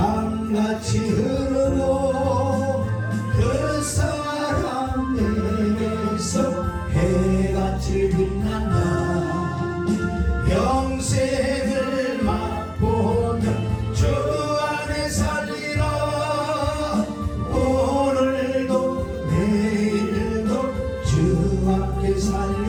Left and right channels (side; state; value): both; identical; correlation 1.00